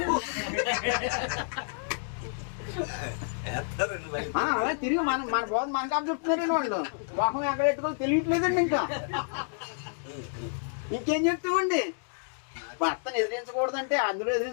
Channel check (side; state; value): right; silent; digital silence